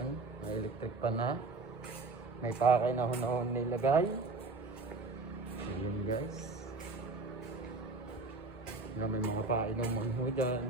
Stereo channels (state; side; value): quieter; left; 3.6 dB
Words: may electric pan na. May pakay na ho nilagay. So yun guys. Yan, may mga painuman ho dyan.